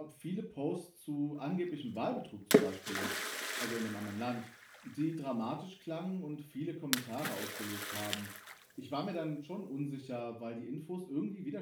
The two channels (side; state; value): both; identical; correlation 1.00